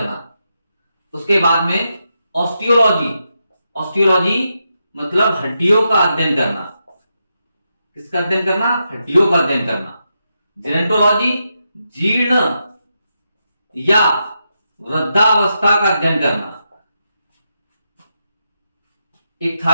उसके बाद में ऑस्टियोलॉजी मतलब हड्डियों का अध्ययन करना। किसका अध्ययन करना? हड्डियों का अध्ययन करना। जेनेटोलॉजी जीर्ण या वृद्धावस्था का अध्ययन करना।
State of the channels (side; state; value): both; inverted; correlation -0.85